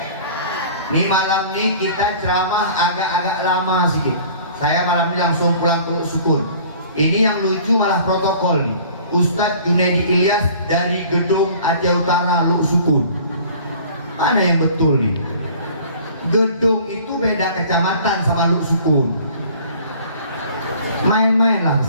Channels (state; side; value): inverted; both; correlation -0.49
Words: Ini malam ini kita ceramah agak-agak lama sedikit. Saya malam ini langsung pulang ke Syukur. Ini yang lucu malah protokol nih. Ustadz Junaidi Ilyas dari gedung Aceh Utara Luk Sukun. Mana yang betul nih? Gedung itu beda kecamatan sama Luk Sukun. Main-mainlah